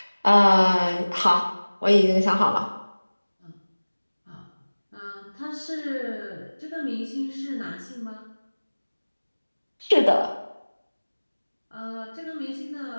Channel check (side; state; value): both; inverted; correlation -1.00